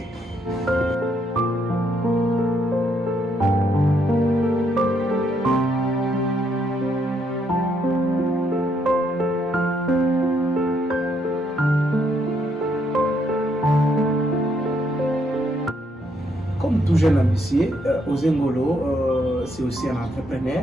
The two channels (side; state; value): both; normal; correlation 0.73